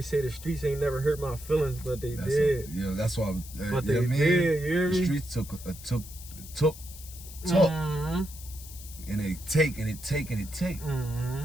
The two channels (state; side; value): noise; left; hiss, 15 dB below the sound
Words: to say the streets ain't never hurt my feelings, but they did. Yeah, that's why. But they did. You hear me? The streets took, Mm-hmm. and they take and it take and it take, Mm-hmm.